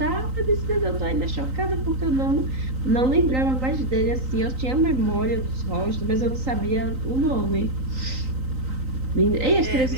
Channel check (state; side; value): late; left; 3.9 ms